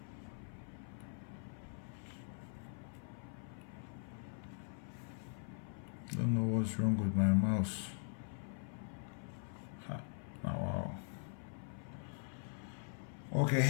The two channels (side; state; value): right; silent; 50 dB below the other